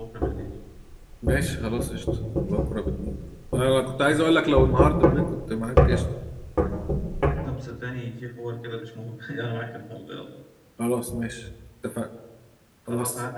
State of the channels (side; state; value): both; identical; correlation 1.00